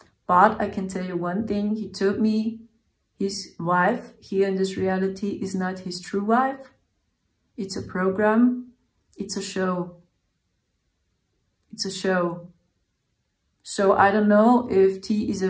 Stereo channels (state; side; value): identical; both; correlation 1.00